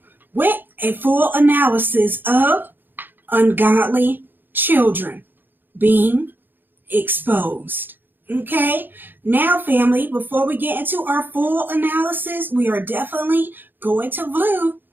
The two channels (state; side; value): late; left; 0.093 ms